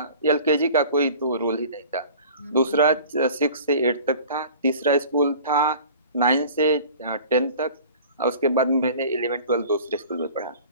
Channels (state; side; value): inverted; both; correlation -0.44